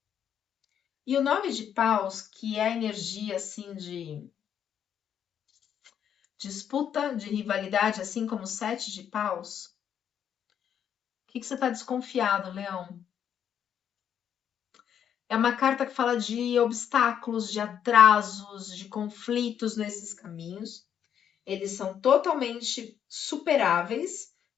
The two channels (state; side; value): quieter; right; 8.9 dB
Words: E o 9 de paus, que é a energia assim de disputa, de rivalidade, assim como o 7 de paus. O que você está desconfiado, Leão? É uma carta que fala de obstáculos, de atrasos, de conflitos nesses caminhos. Eles são totalmente superáveis,